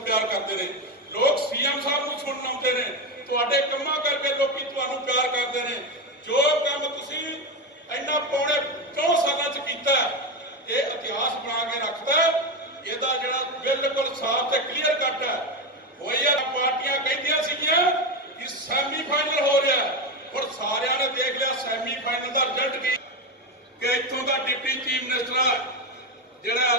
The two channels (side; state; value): both; normal; correlation 0.14